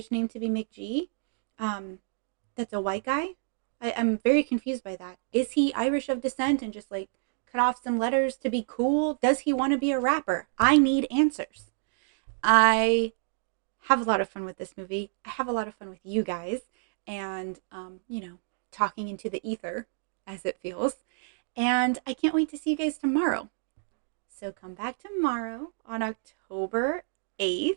name to be McG. That's a white guy. I'm very confused by that. Is he Irish of descent and just like cut off some letters to be cool? Does he want to be a rapper? I need answers. I have a lot of fun with this movie. I have a lot of fun with you guys and, talking into the ether as it feels. And I can't wait to see you guys tomorrow. So come back tomorrow on October 8th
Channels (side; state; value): left; silent; digital silence